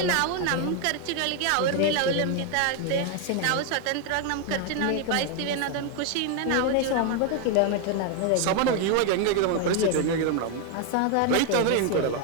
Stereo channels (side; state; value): both; different; correlation 0.01